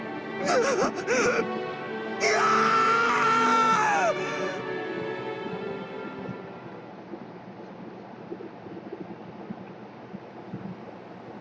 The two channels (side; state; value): both; identical; correlation 1.00